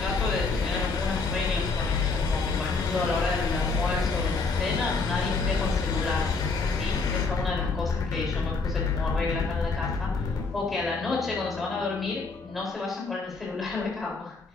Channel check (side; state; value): right; quieter; 4.2 dB